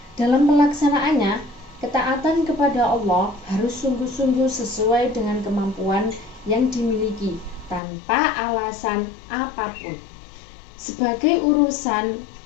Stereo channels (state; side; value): drops out; right; at 7.8 s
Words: Dalam pelaksanaannya, ketaatan kepada Allah harus sungguh-sungguh sesuai dengan kemampuan yang dimiliki tanpa alasan apapun. Sebagai urusan